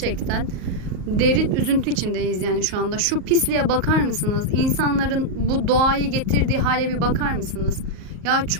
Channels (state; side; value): late; left; 38 ms